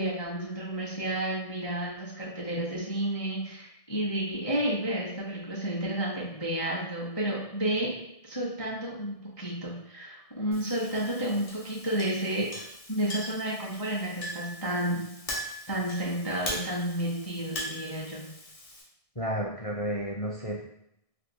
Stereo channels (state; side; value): late; right; 1.6 ms